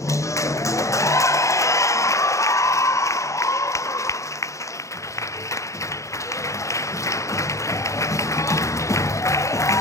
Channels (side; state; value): right; late; 0.15 ms